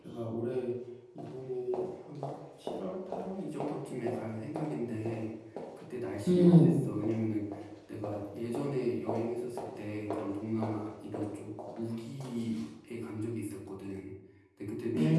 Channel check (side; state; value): both; identical; correlation 1.00